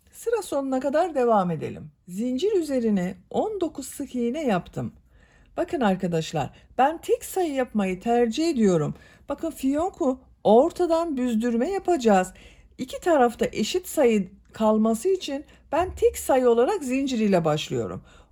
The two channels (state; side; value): identical; both; correlation 1.00